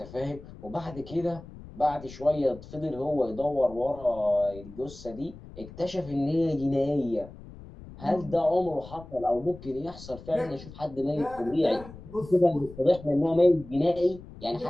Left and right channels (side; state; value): left; noise; rumble, 17 dB below the sound